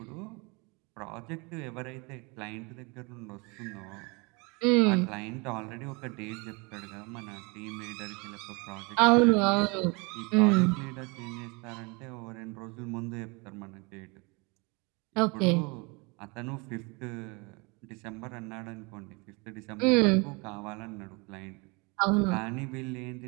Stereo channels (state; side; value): quieter; left; 28.6 dB